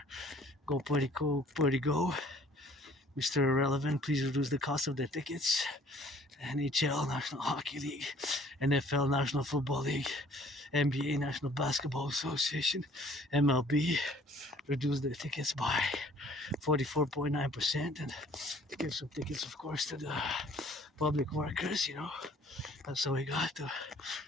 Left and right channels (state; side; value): normal; both; correlation 0.55